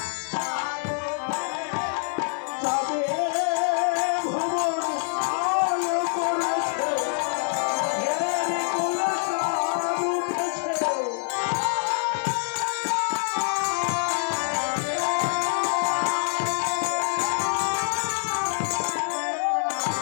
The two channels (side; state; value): right; silent; digital silence